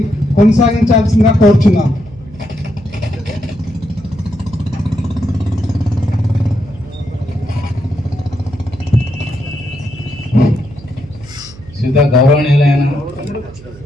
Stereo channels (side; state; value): right; noise; hum, 19 dB below the sound